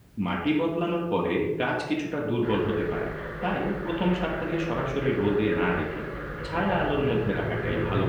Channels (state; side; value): identical; both; correlation 1.00